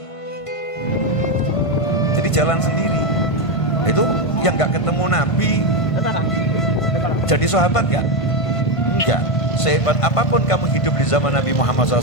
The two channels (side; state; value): right; late; 1.5 ms